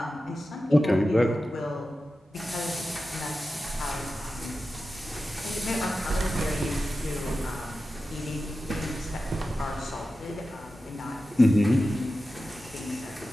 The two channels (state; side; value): normal; both; correlation 0.93